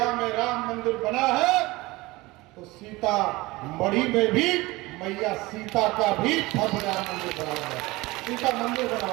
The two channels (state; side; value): quieter; left; 21.3 dB